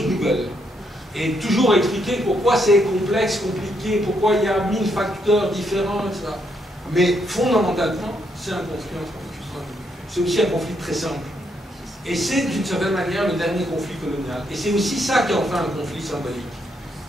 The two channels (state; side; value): normal; both; correlation 0.76